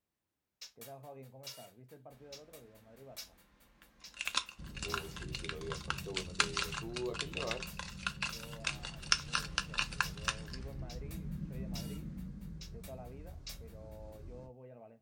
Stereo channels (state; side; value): identical; both; correlation 1.00